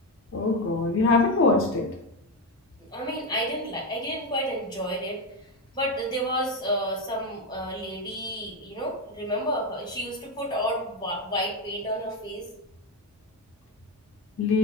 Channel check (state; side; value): normal; both; correlation 0.12